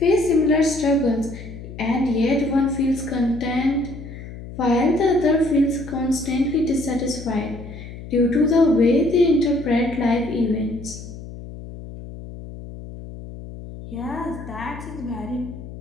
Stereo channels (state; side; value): noise; left; hum, 13 dB below the sound